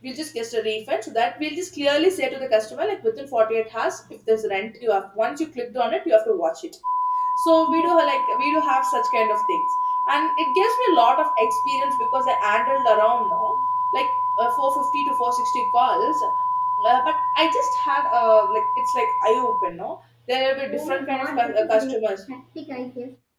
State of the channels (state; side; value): identical; both; correlation 1.00